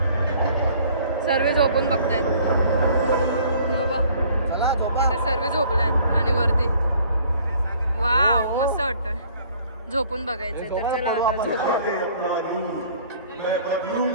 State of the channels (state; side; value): inverted; both; correlation -0.55